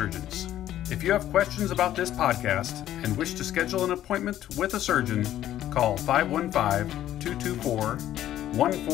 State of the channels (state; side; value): quieter; right; 12.4 dB